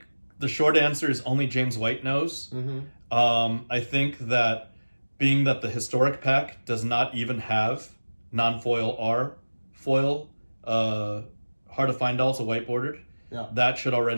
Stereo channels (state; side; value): inverted; both; correlation -1.00